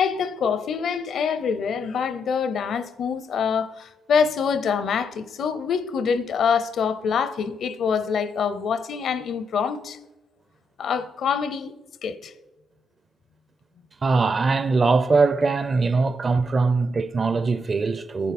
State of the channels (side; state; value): both; normal; correlation 0.78